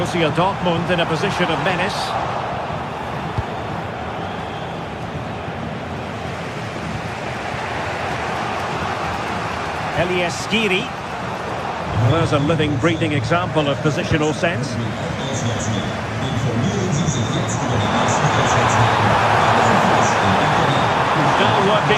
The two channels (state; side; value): identical; both; correlation 1.00